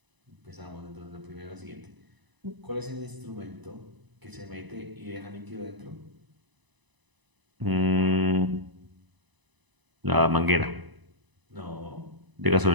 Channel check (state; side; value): late; left; 1.0 ms